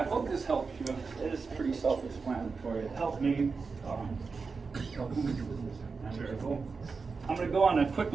hope this helps you. It is pretty self-explanatory. It helped me. I'm going to go on a quick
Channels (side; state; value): left; quieter; 4.7 dB